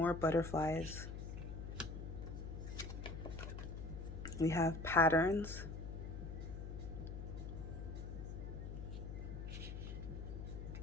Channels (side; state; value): left; noise; hum, 6 dB below the sound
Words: butterflies. We have patterns.